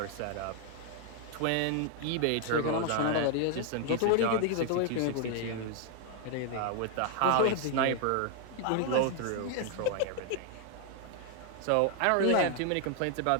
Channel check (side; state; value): both; different; correlation 0.00